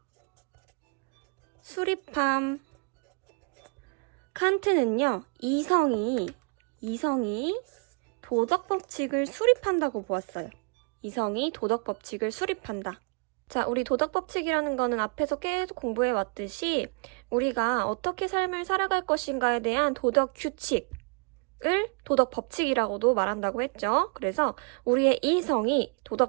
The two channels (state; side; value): quieter; left; 36.0 dB